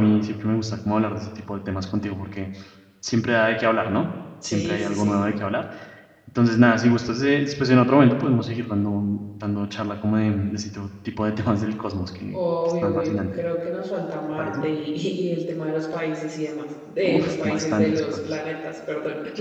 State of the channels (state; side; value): identical; both; correlation 1.00